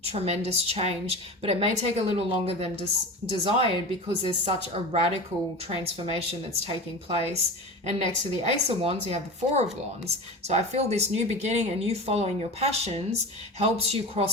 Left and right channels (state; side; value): normal; both; correlation 0.30